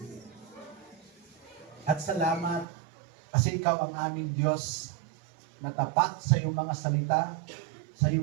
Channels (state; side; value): drops out; left; at 2.7 s